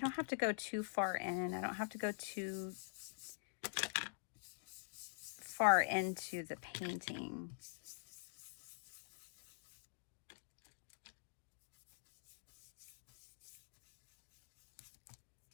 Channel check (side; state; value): right; silent; digital silence